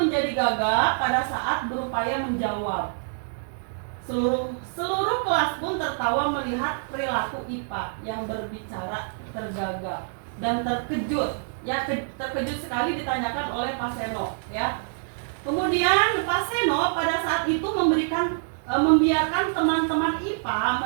gagap pada saat berupaya menjawab. Seluruh kelas pun tertawa melihat perilaku IPA yang berbicara tergagap dan terkejut. Ya, terkejut sekali ditanyakan oleh Pak Seno, ya. Kemudian Pak Seno pada saat itu membiarkan teman-teman IPA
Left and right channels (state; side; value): silent; left; digital silence